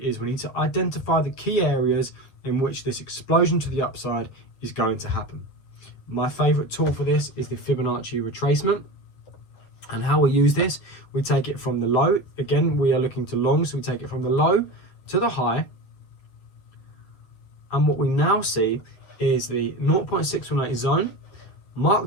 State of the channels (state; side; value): late; right; 9.0 ms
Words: we need to identify the key areas in which this explosion to the upside is going to happen. My favorite tool for this is the Fibonacci Retracement. And how we use this, we take it from the low. Again, we are looking to long, so we take it from the low to the high. And what we now see is the 0.618 zone